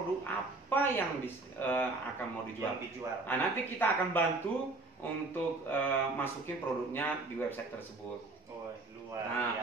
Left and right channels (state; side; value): quieter; left; 3.3 dB